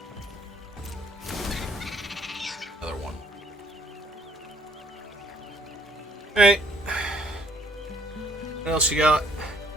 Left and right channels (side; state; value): both; normal; correlation 0.61